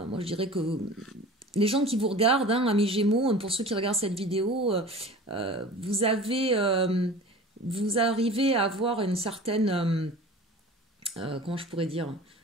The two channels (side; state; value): both; normal; correlation 0.40